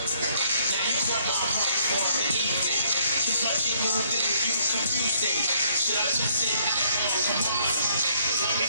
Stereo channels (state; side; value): inverted; both; correlation -0.66